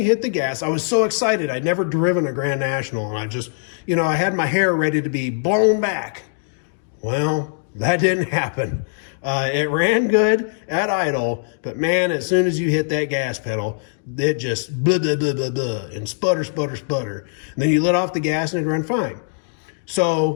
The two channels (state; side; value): silent; right; digital silence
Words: hit the gas, I was so excited. I'd never driven a Grand National, and I just, you know, I had my hair ready to be blown back. Well, that didn't happen. It ran good at idle, but man, as soon as you hit that gas pedal, it just blah, blah, blah, blah, blah, and sputter, sputter, sputter. And then you let off the gas and it ran fine.